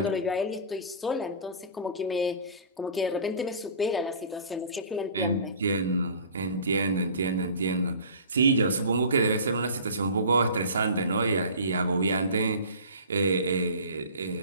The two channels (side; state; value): both; inverted; correlation -0.41